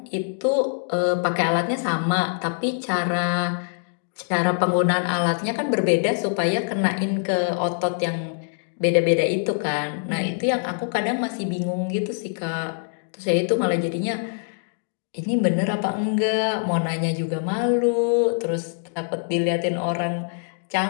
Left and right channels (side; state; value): right; silent; 63 dB below the other